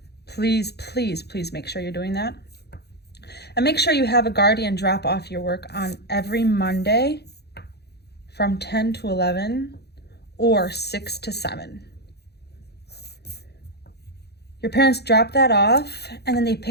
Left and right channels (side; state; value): right; late; 0.48 ms